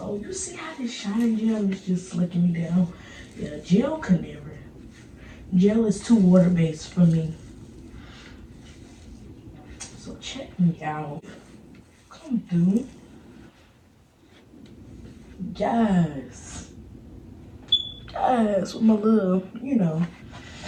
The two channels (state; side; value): identical; both; correlation 1.00